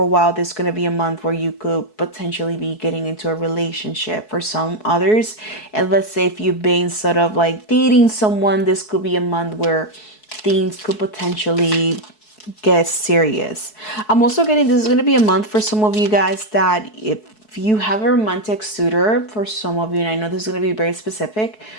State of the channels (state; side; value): late; right; 4.7 ms